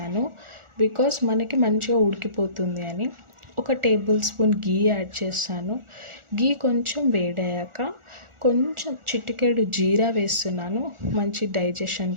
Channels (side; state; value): left; late; 1.4 ms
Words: బికాస్ మనకి మంచిగా ఉడికిపోతుంది అని. ఒక tablespoon గీ యాడ్ చేస్తాను. గీ కొంచెం వేడయ్యాక కొంచెం చిటికెడు జీరా వేస్తున్నాను, మంచి డైజెషన్